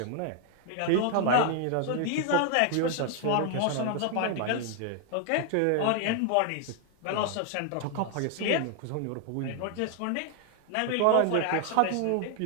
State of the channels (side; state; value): both; different; correlation 0.00